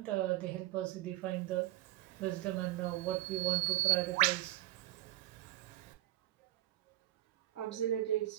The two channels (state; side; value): quieter; left; 16.0 dB